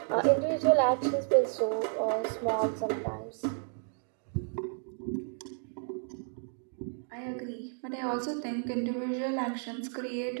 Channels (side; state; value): left; silent; 56 dB below the other